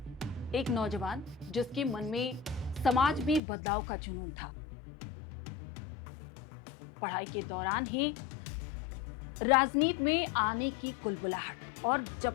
एक नौजवान जिसके मन में समाज में बदलाव का जुनून था। पढ़ाई के दौरान ही राजनीति में आने की कुलबुलाहट और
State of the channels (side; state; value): right; drops out; at 3.4 s